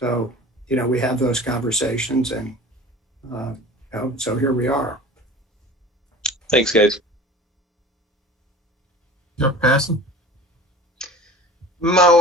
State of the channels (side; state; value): both; normal; correlation 0.39